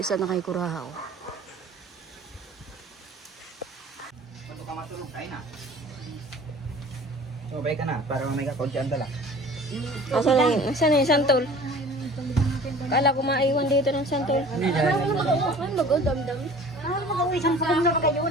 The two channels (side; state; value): both; normal; correlation 0.45